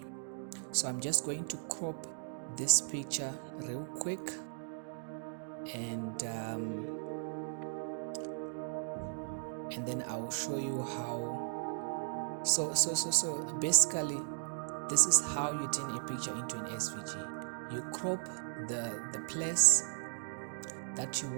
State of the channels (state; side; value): silent; left; digital silence